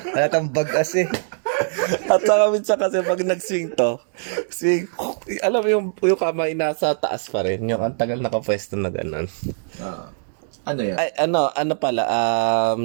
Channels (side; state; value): left; silent; digital silence